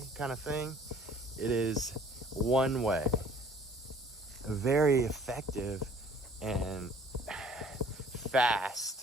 kind of thing. It is one way, a very effective and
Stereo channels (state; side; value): normal; both; correlation 0.54